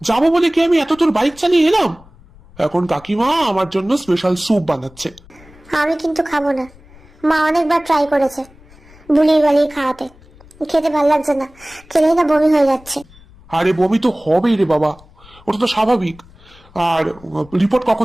যাবো বলে কি আমি এত তোর বাইক চালিয়ে এলাম? এখন কাকিমা আমার জন্য স্পেশাল স্যুপ বানাচ্ছে। আমি কিন্তু খাবো না, মা অনেকবার ট্রাই করেছে বুলিয়ে বালিয়ে খাওয়াতে, খেতে ভাল লাগছে না, খেলেই না বমি হয়ে যাচ্ছে। আরে বমি তো হবেই রে বাবা, ওটা তো স্বাভাবিক। আর রিপোর্ট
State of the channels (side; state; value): left; noise; rumble, 25 dB below the sound